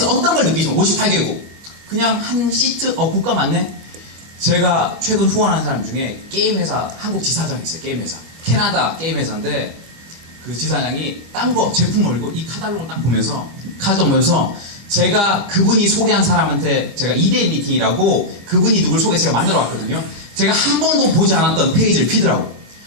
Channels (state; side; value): late; left; 25 ms